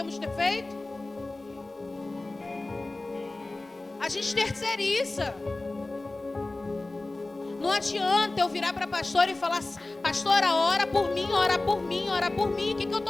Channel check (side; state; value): right; quieter; 3.0 dB